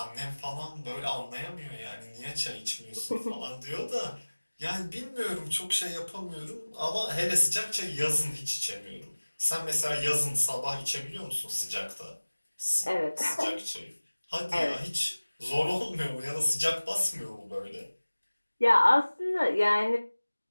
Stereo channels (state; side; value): inverted; both; correlation -1.00